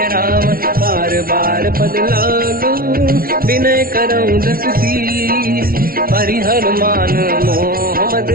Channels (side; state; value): left; late; 0.43 ms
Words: राम, बार बार पद लागू, विनय करऊं दस शीस, परिहर मान मोहम्मद,